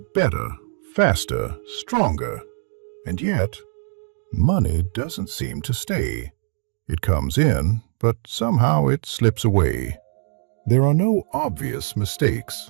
faster, stronger, and yet, money doesn't seem to stay. It comes in, but somehow it slips away. There are no obvious mistakes,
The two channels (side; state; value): left; silent; digital silence